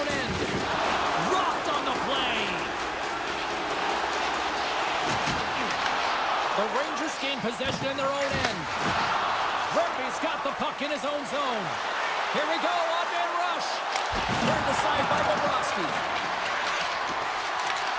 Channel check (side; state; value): both; identical; correlation 1.00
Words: end. Rocked on the play. The Rangers gain possession in their own end. Rugby's got the puck in his own zone. Here we go, odd-man rush. Turned aside by Bobrovsky.